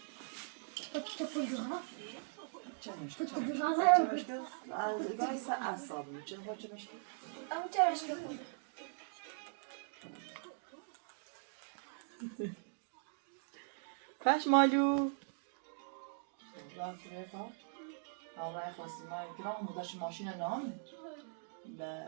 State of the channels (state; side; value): silent; left; digital silence